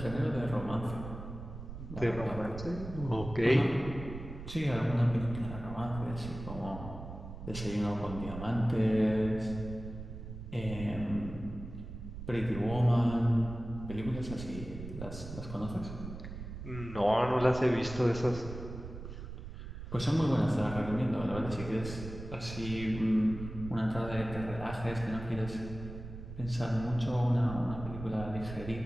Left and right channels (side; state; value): right; noise; rumble, 10 dB below the sound